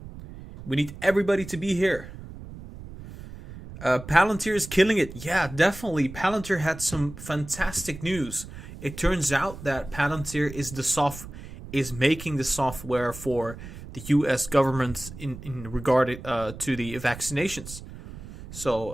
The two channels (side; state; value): right; noise; rumble, 14 dB below the sound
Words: We need everybody to be here. Palantir is killing it. Yeah, definitely. Palantir had some fantastic news. It turns out that Palantir is making the software for the U.S. government in regard to the vaccinations.